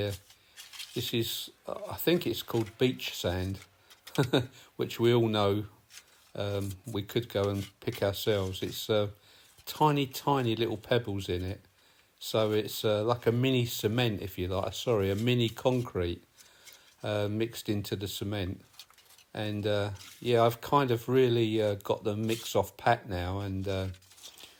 is, I think it's called beach sand, which we all know we could go and pick ourselves. It's tiny little pebbles in it, so it's like a mini cement, if you like, a mini concrete mixed into the cement. And yeah, I've kind of really got the mix off pat now, and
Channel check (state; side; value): identical; both; correlation 1.00